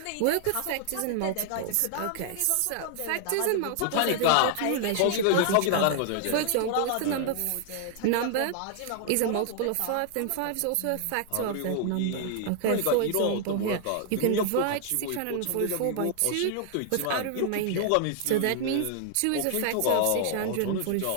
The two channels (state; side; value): different; both; correlation 0.00